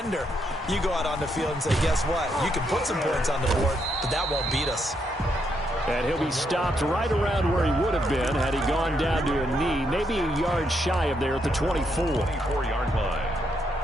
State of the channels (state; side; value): normal; both; correlation 0.78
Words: you go out on the field and say, guess what? You can put some points on the board, but that won't beat us. And he'll be stopped right around where he would have been had he gone down to a knee, maybe a yard shy of there at the 24. 24-yard line.